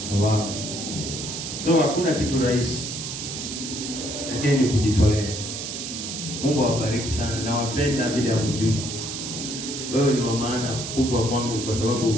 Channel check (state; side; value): noise; right; hiss, 6 dB below the sound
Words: Wow. So hakuna kitu rahisi, lakini ni kujitolea. Mungu awabariki sana, na wapenda bila mjui. Wewe ni wa maana kubwa kwangu, kwa